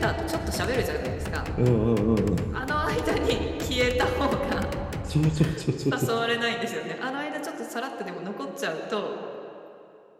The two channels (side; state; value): both; identical; correlation 1.00